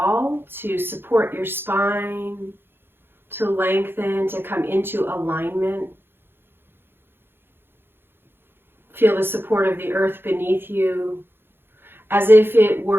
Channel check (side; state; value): left; late; 0.10 ms